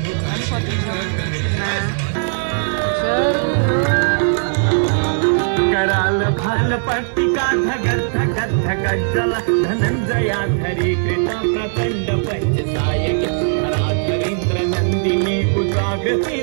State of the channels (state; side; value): silent; left; digital silence